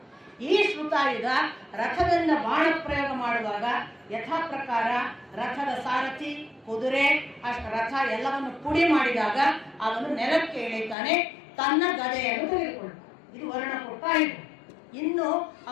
ಈ ಶ್ರುತಾಯುಧ ರಥದಿಂದ ಬಾಣ ಪ್ರಯೋಗ ಮಾಡುವಾಗ ಯಥಾ ಪ್ರಕಾರ ರಥದ ಸಾರಥಿ, ಕುದುರೆ, ರಥ ಎಲ್ಲವನ್ನು ಪುಡಿ ಮಾಡಿದಾಗ ಅವನು ನೆಲಕ್ಕೆ ಇಳಿತಾನೆ, ತನ್ನ ಗದೆಯನ್ನು ತೆಗೆದುಕೊಳ್ತಾನೆ. ಇದು ವರುಣ ಕೊಟ್ಟ ಆಯುಧ. ಇನ್ನು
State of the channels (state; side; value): drops out; right; at 11.0 s